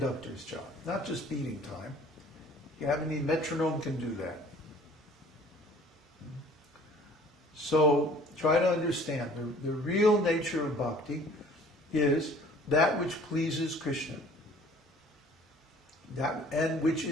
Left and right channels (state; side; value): normal; both; correlation 0.52